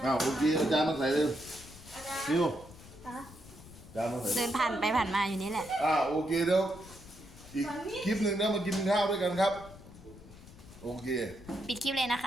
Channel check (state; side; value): noise; left; rumble, 19 dB below the sound